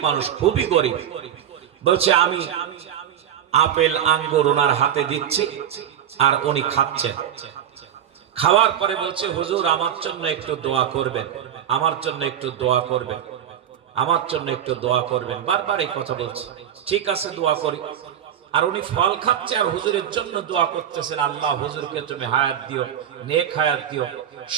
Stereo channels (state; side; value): quieter; left; 9.9 dB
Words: মানুষ, খুবই গরিব। বলছে আমি আপেল আঙ্গুর ওনার হাতে দিচ্ছি আর উনি খাচ্ছেন। খাওয়ার পরে বলছে হুজুর আমার জন্য একটু দোয়া করবেন, আমার জন্য একটু দোয়া করবেন, আমার জন্য একটু দোয়া করবেন। বারবার এই কথা বলছে। ঠিক আছে দোয়া করি। আর উনি ফল খাচ্ছে আর হুজুরের জন্য দোয়া করতেছেন, আল্লাহ হুজুরকে তুমি হায়াত দিও, নেক হায়াত দিও,